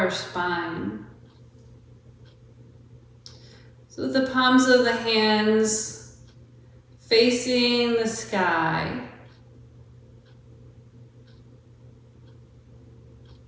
spine. So the palms of the hands facing the sky.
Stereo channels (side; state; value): both; identical; correlation 1.00